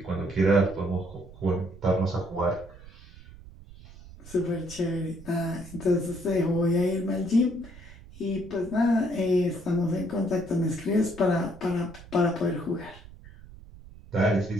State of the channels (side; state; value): right; noise; rumble, 19 dB below the sound